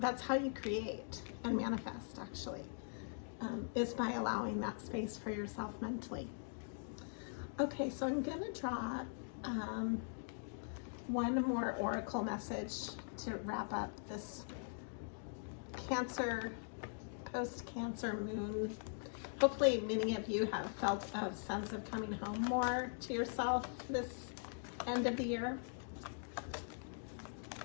That's how you create and manifest, actually, is by allowing that space for yourself mentally. Okay, so I'm going to draw one more oracle message to wrap up this Cancer, post-Cancer moon. Hopefully many of you have felt a sense of coming home more to yourself this end of the year,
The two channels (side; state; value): right; silent; digital silence